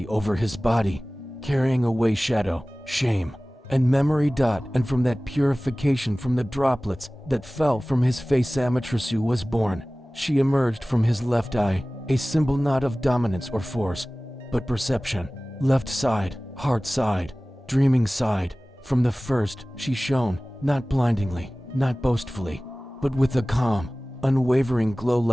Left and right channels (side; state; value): both; normal; correlation 0.98